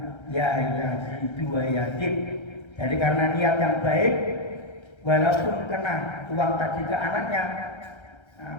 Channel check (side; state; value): right; late; 1.3 ms